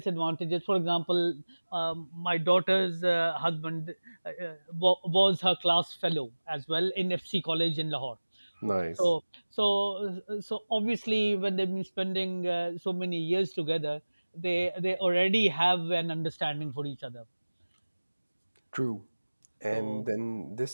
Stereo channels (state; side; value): inverted; both; correlation -1.00